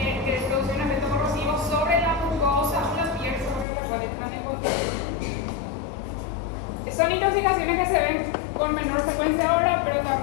producir un efecto corrosivo sobre la mucosa o la piel sobre la cual entran en contacto. Son intoxicaciones que se ven con menor frecuencia ahora, pero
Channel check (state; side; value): drops out; right; at 3.7 s